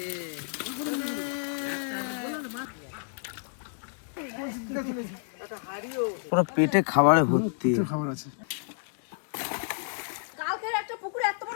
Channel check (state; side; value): silent; right; digital silence